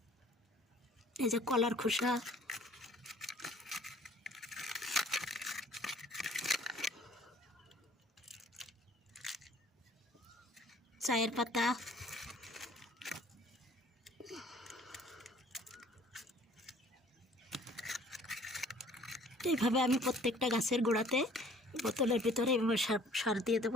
এই যে কলার খোসা, চায়ের পাতা, এইভাবে আমি প্রত্যেকটা গাছের গোড়াতে বোতলের ভিতরে এইভাবে সার দিয়ে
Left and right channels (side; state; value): both; normal; correlation 0.54